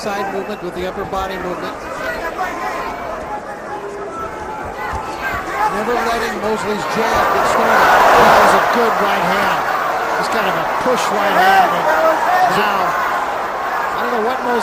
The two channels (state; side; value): identical; both; correlation 1.00